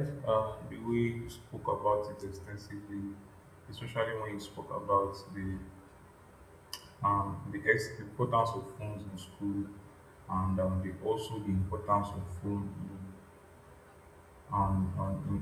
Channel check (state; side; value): identical; both; correlation 1.00